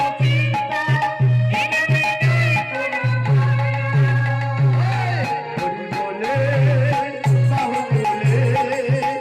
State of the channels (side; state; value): both; identical; correlation 1.00